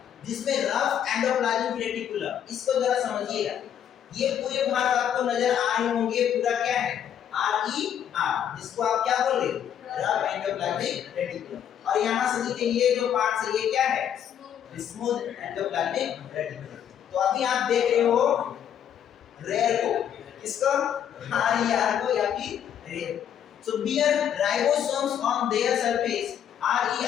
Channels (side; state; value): right; quieter; 9.4 dB